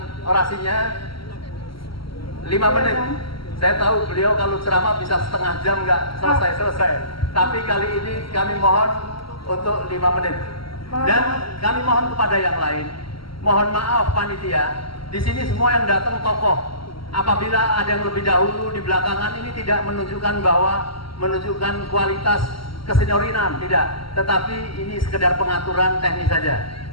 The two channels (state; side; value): late; right; 0.74 ms